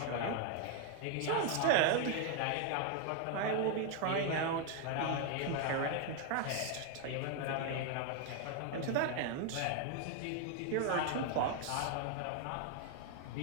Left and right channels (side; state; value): both; different; correlation 0.01